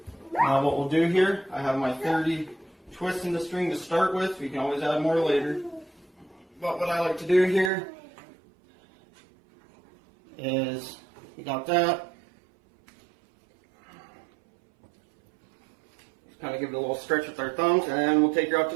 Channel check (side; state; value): left; drops out; at 7.7 s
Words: now what we'll do here, I have my 30 twists in the string to start with. We can always add more later. But what I like to do here is, we got that. Just kind of give it a little stretch with our thumbs, and we'll take her out to